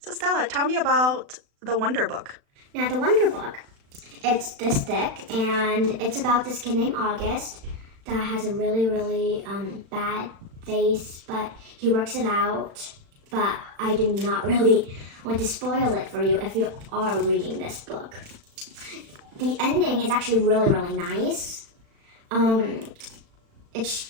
Stella, tell me about the Wonder book. Now, the Wonder book, it's this thick, and it's about this kid named August that has a really bad face, but he works it out. But I do not really want to spoil it for you if you are reading this book. The ending is actually really nice. It's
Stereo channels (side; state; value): left; late; 36 ms